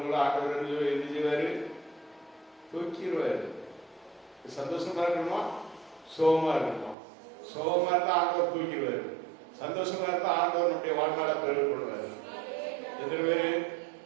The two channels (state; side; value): drops out; left; at 7.0 s